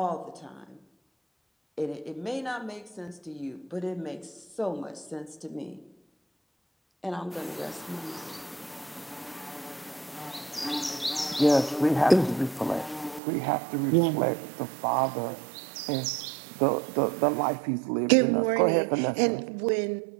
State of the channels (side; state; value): left; drops out; at 13.2 s